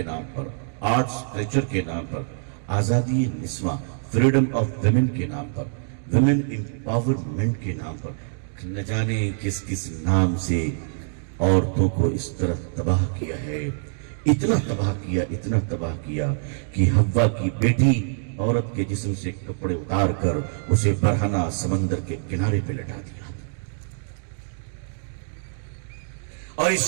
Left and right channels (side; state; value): left; silent; digital silence